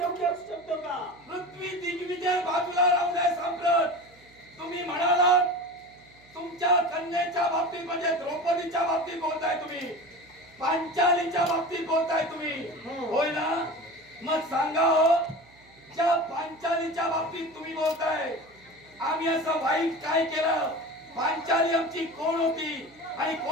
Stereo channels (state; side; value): noise; right; hum, 27 dB below the sound